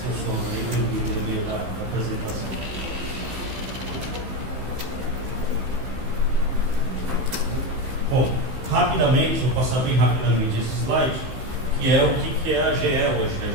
sono aí no meio da apresentação. Bom, rapidamente, vou passar bem rapidamente esse slide, que é o que é a GE hoje. A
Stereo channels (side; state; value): left; late; 15 ms